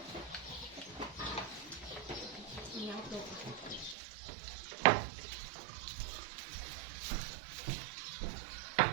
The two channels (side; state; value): left; drops out; at 4.0 s